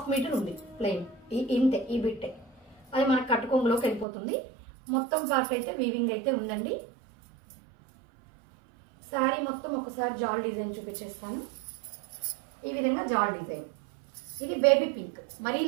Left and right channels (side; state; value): left; drops out; at 4.0 s